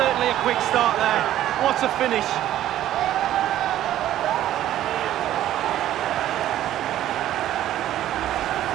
a quick start there. What a finish.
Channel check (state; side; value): quieter; left; 12.8 dB